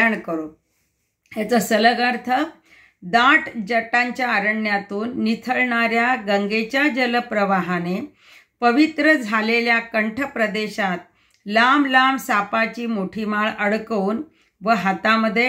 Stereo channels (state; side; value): identical; both; correlation 1.00